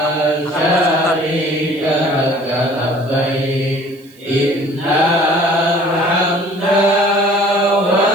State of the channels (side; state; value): right; noise; hiss, 28 dB below the sound